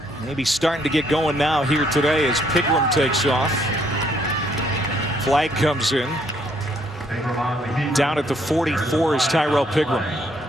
Maybe starting to get going now here today as Pigram takes off. Flag comes in. Down at the 44 is Tyrell Pigram.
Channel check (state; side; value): normal; both; correlation 0.68